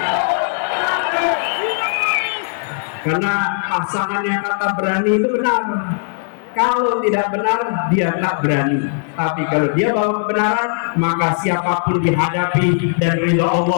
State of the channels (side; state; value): right; silent; 60 dB below the other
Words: Karena pasangannya kata berani itu benar. Kalau tidak benar, dia tak berani. Tapi kalau dia bawa kebenaran, maka siapapun dihadapi dan ridha